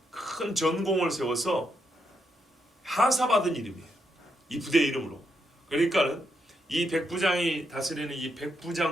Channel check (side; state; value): both; normal; correlation 0.81